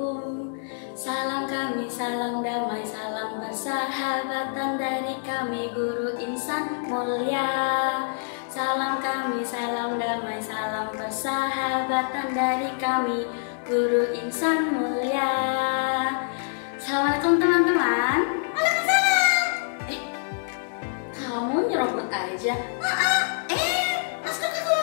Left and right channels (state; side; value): silent; right; digital silence